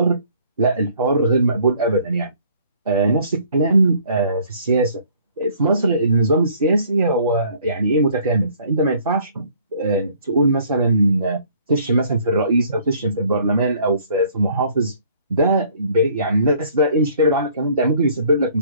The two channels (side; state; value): both; inverted; correlation -0.58